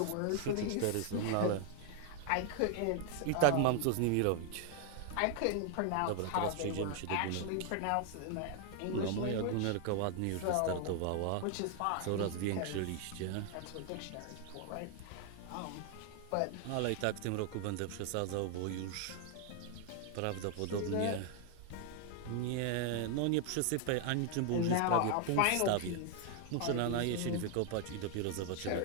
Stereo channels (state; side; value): different; both; correlation 0.00